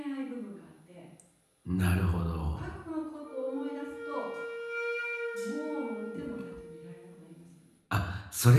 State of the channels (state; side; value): identical; both; correlation 1.00